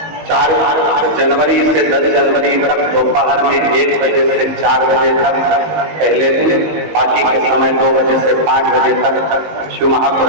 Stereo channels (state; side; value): late; left; 19 ms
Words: 4 जनवरी से 10 जनवरी तक दोपहर में 1 बजे से 4 बजे तक पहले दिन, बाकी के समय 2 बजे से 5 बजे तक शिव